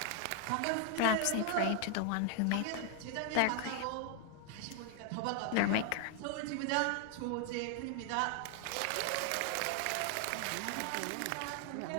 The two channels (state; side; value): different; both; correlation 0.00